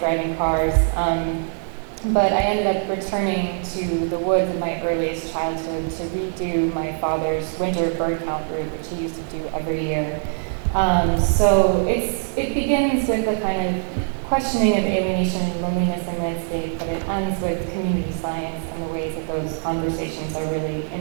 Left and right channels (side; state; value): left; silent; digital silence